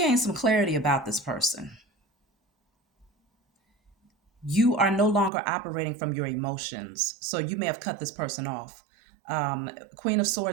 some clarity about this person. You are no longer operating from your emotions. So you may have cut this person off. Queen of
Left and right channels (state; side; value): drops out; left; at 5.3 s